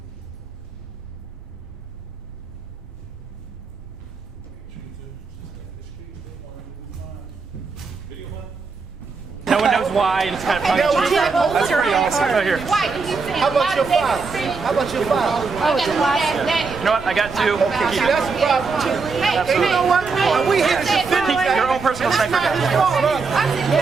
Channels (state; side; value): quieter; left; 4.6 dB